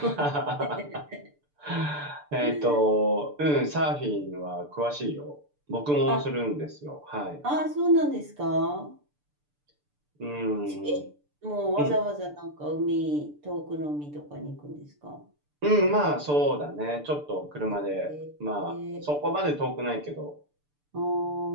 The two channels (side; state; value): left; late; 6.8 ms